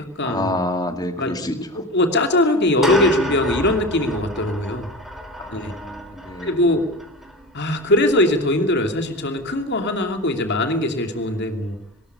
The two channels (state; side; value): normal; both; correlation 0.28